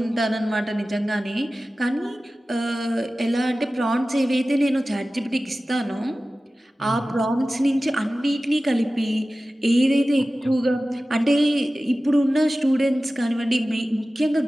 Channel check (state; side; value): normal; both; correlation 0.96